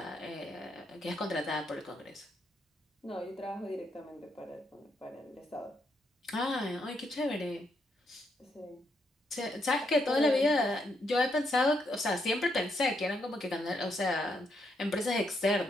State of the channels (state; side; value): normal; both; correlation 0.77